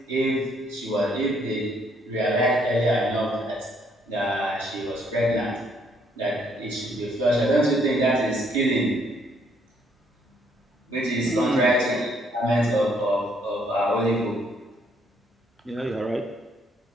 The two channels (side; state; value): both; normal; correlation 0.69